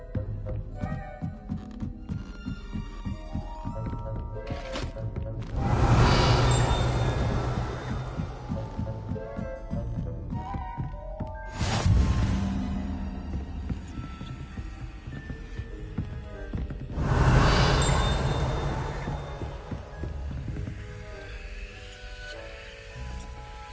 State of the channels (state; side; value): identical; both; correlation 1.00